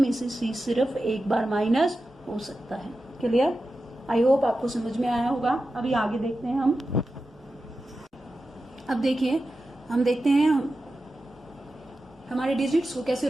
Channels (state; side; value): normal; both; correlation 0.92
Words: से सी सिर्फ एक बार माइनस हो सकता है। क्लियर? आई होप आपको समझ में आया होगा। अभी आगे देखते हैं हम। अब देखिए हम देखते हैं हमारे डिजिट्स को कैसे